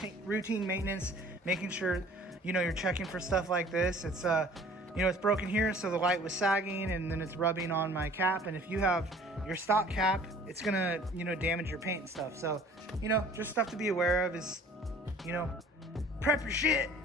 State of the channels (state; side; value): normal; both; correlation 0.50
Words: maintenance, making sure, you know, you're checking for stuff like this. It's you know, it's broken here, so the light was sagging and then it's rubbing on my cap, and if you have your stock cap, it's gonna, you know, damage your paint and stuff. So, you know, just stuff to be aware of is, you know, prep your shit,